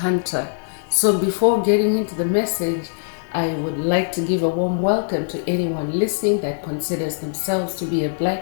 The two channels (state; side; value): silent; right; digital silence